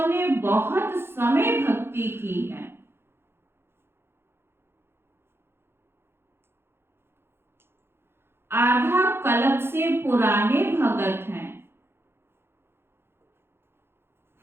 ने बहुत समय भक्ति की है, आधा कल्प से पुराने भगत हैं,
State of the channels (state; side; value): late; left; 0.11 ms